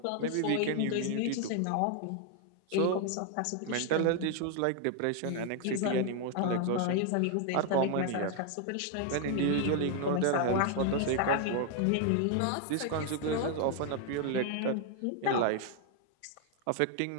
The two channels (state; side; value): different; both; correlation 0.00